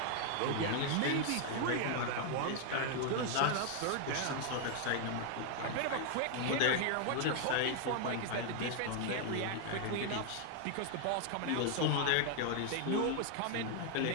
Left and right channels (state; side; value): different; both; correlation 0.00